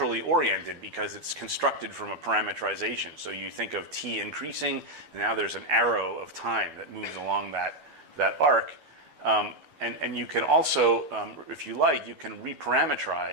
oriented because it's constructed from a parametrization. So you think of t increasing, and now there's an arrow of time that moves along that arc. And you can also, if you like, you can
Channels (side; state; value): left; late; 13 ms